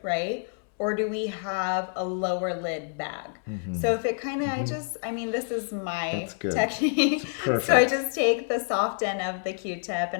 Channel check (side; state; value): right; silent; 60 dB below the other